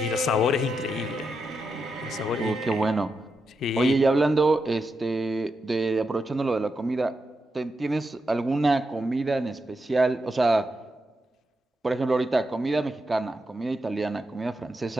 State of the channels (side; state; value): both; normal; correlation 0.86